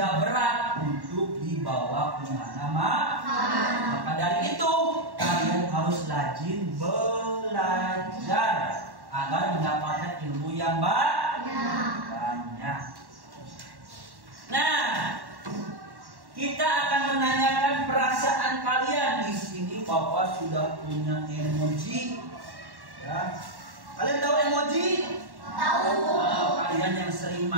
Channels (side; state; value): left; late; 1.1 ms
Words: berat untuk dibawa kemana-mana. Maka dari itu kalian harus rajin belajar agar mendapatkan ilmu yang banyak. Nah, kita akan menanyakan perasaan kalian. Di sini Bapak sudah punya emoji. Ya. Kalian tahu emoji? Tahu. Kalian yang sering